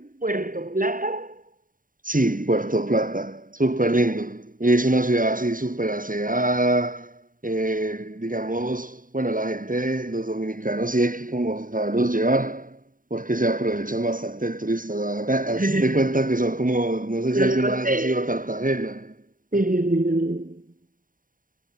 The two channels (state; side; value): late; left; 0.40 ms